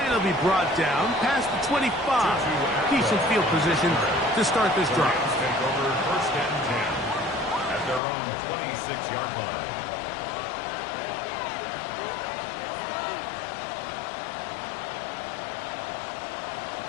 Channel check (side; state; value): right; drops out; at 8.0 s